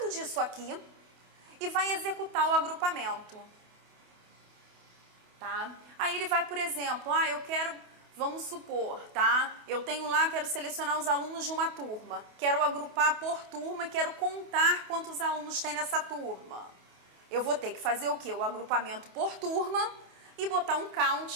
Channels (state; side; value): late; left; 28 ms